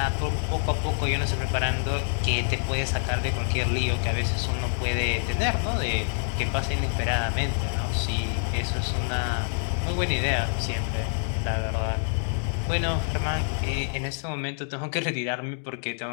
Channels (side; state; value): right; silent; digital silence